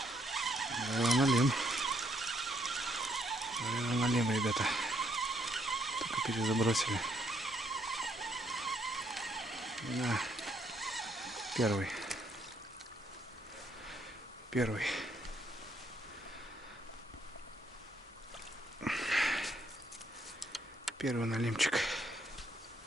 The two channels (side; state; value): both; normal; correlation 0.72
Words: Налим. Налим, ребята. Только перезабросили. На. Первый. Первый налимчик.